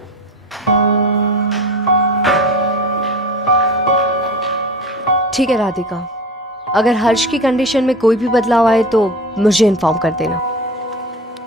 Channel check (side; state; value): both; normal; correlation 0.33